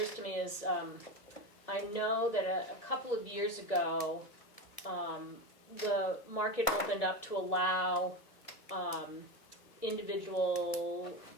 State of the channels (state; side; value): late; right; 1.7 ms